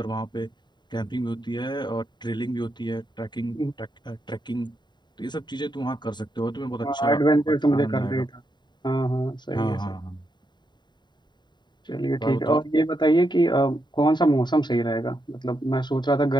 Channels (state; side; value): late; right; 0.21 ms